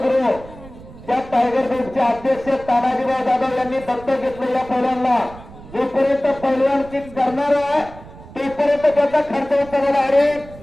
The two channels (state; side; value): noise; right; rumble, 18 dB below the sound